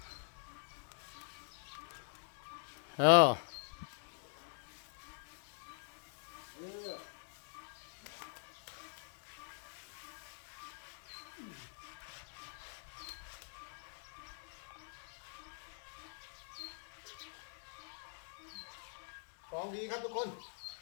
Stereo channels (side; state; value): right; silent; digital silence